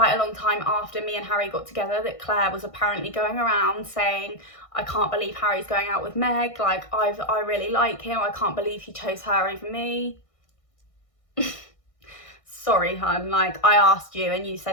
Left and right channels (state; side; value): late; right; 1.6 ms